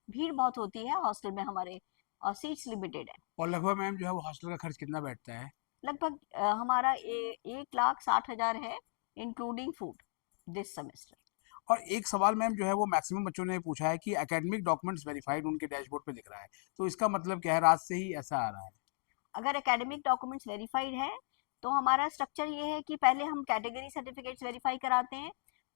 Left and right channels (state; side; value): silent; right; 54 dB below the other